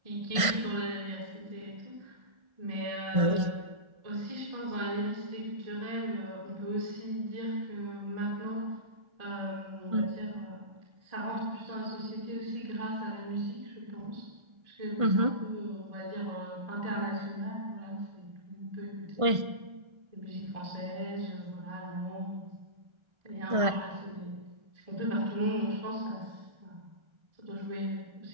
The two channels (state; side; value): late; left; 1.5 ms